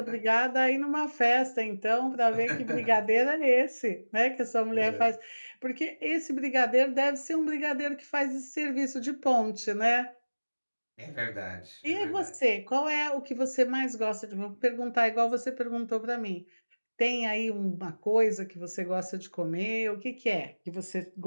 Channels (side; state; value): both; inverted; correlation -1.00